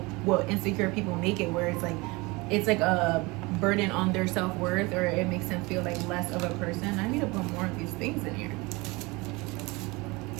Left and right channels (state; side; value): quieter; left; 24.5 dB